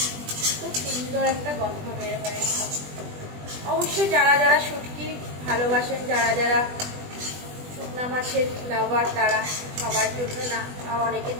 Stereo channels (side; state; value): left; late; 20 ms